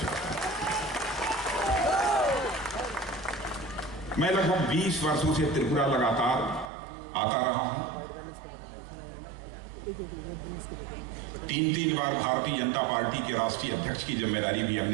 हूं। मैं लगभग 20 वर्षों से त्रिपुरा लगातार आता रहा हूं। 3 बार भारतीय जनता पार्टी के राष्ट्रीय अध्यक्ष की जिम्मेदारी भी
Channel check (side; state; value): left; drops out; at 6.7 s